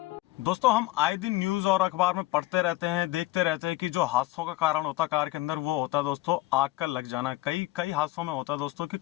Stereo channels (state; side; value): quieter; right; 18.4 dB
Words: दोस्तों, हम आए दिन न्यूज और अखबार में पढ़ते रहते हैं, देखते रहते हैं कि जो हादसों का कारण होता है कार के अंदर, वो होता है दोस्तों आग का लग जाना। कई हादसों में होता है दोस्तों कि